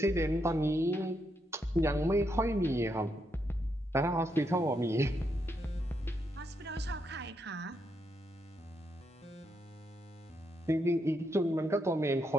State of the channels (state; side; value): normal; both; correlation 0.80